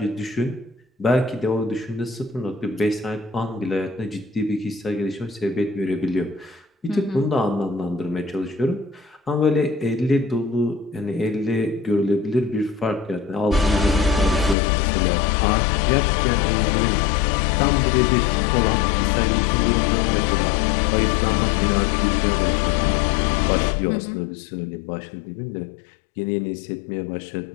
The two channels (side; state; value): right; drops out; at 14.6 s